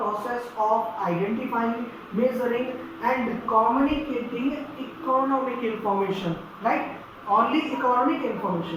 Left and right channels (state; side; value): identical; both; correlation 1.00